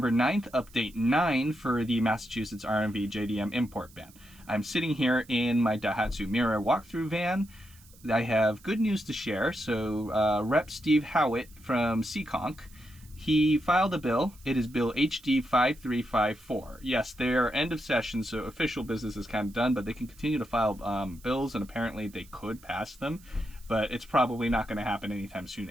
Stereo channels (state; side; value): noise; right; hiss, 25 dB below the sound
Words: 9th, update 9 for the Massachusetts RMV JDM import ban. I'm sitting here in my Daihatsu Mirai walkthrough van. I have good news to share. So Rep. Steve Howitt from Seekonk, he filed a bill. It is Bill HD 5354. Yes, they are end of session, so official business is kind of done, but they can continue to file bills, and apparently they could pass them. But it's probably not going to happen anytime soon